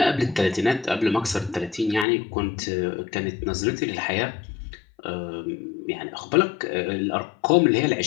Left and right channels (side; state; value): right; drops out; at 2.1 s